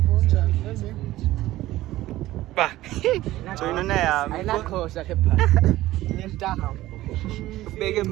bonjani lenze ba joyinona yami ayinakhosa ke pha nentaha beke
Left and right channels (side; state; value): left; quieter; 16.0 dB